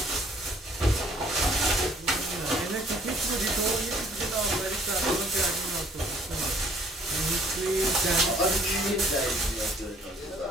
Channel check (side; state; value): both; normal; correlation 0.60